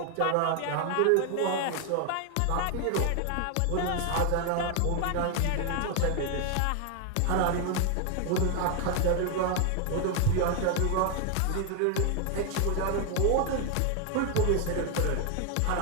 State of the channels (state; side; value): different; both; correlation 0.01